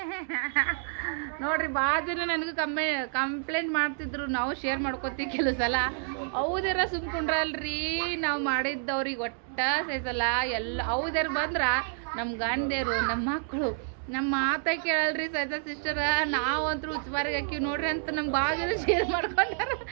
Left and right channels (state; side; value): silent; left; digital silence